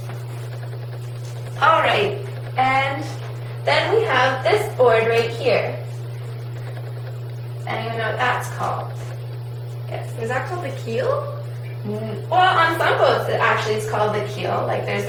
Alright, and then we have this board right here. Anyone know what that's called? Yes. Is that called the keel? Well, on some boats it actually is called the keel. Like there's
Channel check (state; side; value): identical; both; correlation 1.00